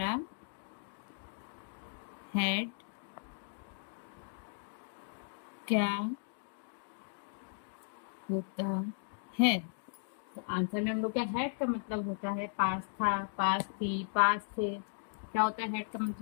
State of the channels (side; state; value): right; silent; digital silence